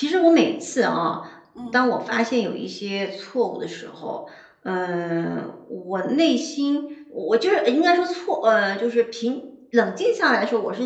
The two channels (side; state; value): both; identical; correlation 1.00